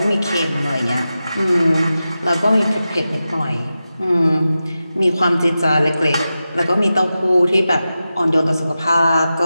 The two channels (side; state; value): both; inverted; correlation -0.93